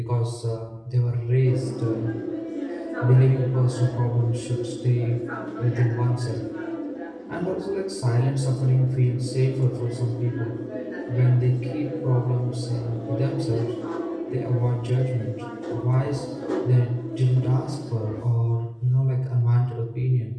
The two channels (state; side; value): identical; both; correlation 1.00